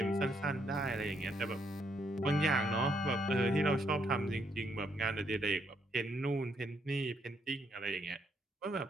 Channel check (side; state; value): both; normal; correlation 0.74